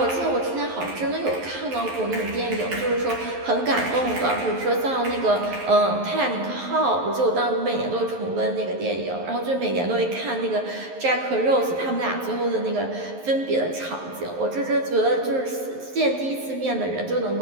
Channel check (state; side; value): late; left; 11 ms